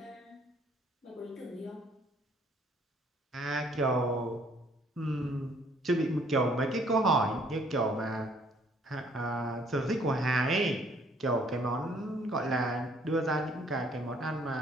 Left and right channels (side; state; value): both; normal; correlation 0.62